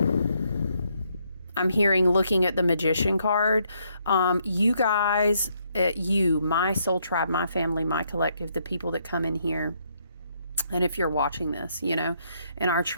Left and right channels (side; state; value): both; inverted; correlation -0.73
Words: I'm hearing, looking at the Magician card, you guys, my soul tribe, my family, my collective, the people that come in here, and if you're watching this, in our